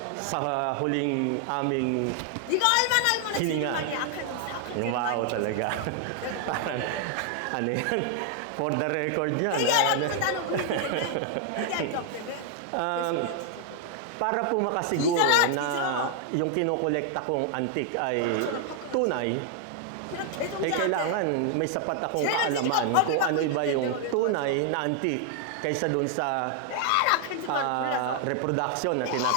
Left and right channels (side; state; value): both; different; correlation 0.00